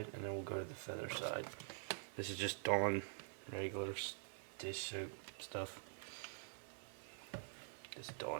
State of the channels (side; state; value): left; silent; digital silence